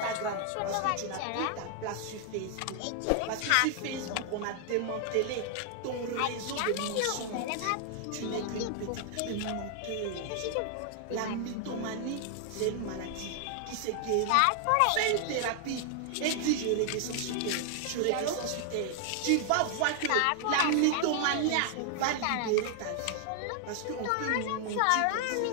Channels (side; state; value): both; different; correlation 0.00